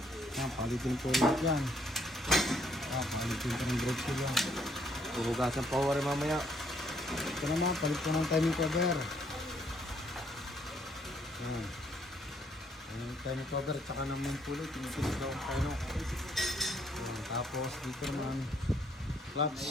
Ayan, palitin po ulit yan. Ayan, palitin po ng brake shoe yan. Huhugasan pa rin mamaya. Ito naman, palit po ng timing cover. Ayan. Yung timing cover, tsaka ng main pulley, tinitinag daw ang tayo. Ayan. Tapos dito naman,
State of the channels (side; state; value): both; normal; correlation 0.69